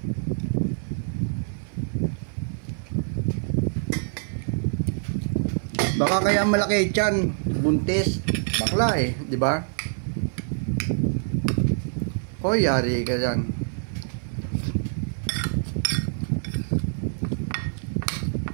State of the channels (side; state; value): left; silent; 58 dB below the other